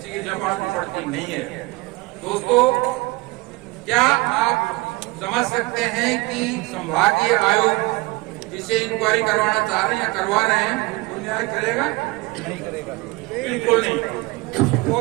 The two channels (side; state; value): left; quieter; 23.2 dB